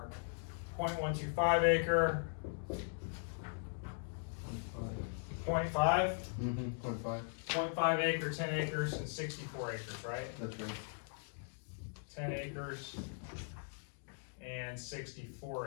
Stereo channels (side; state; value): right; silent; digital silence